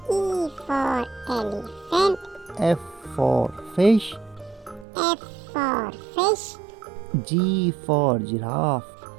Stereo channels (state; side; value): drops out; left; at 4.9 s